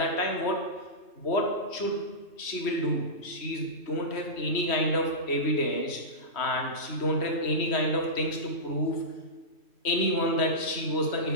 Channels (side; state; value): right; late; 3.1 ms